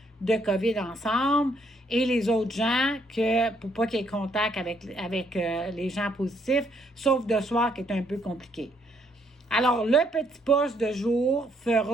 de COVID ensemble et les autres gens pour pas qu'il y ait contact avec les gens positifs, sauf de soir qui est un peu compliqué. Alors, le petit poste de jour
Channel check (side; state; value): both; normal; correlation 0.70